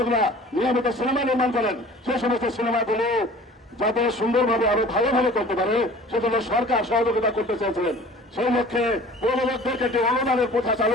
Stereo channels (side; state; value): both; normal; correlation 0.46